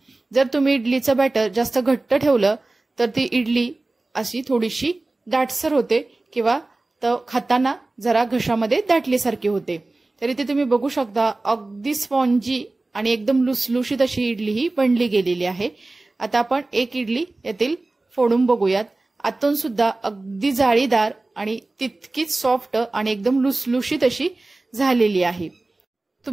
जर तुम्ही इडलीचं बॅटर जास्त घट्ट ठेवलं तर ती इडली अशी थोडीशी दाटसर होते किंवा खाताना जरा घशामध्ये दाटल्यासारखी होते। तर इथे तुम्ही बघू शकता अगदी स्पॉन्जी आणि एकदम लुसलुशीत अशी इडली ही बनली गेलेली आहे। आता आपण एक इडली यातील फोडून बघूयात। आतून सुद्धा अगदी जाळीदार आणि तितकीच सॉफ्ट आणि एकदम लुसलुशीत अशी झालेली आहे।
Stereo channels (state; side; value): quieter; left; 3.1 dB